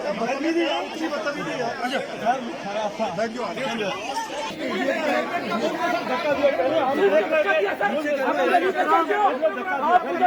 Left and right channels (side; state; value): both; identical; correlation 1.00